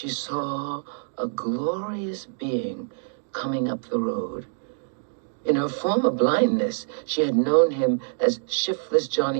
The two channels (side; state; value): left; silent; digital silence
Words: saw a glorious being coming up the road. In her former blindness, she had known him as shiftless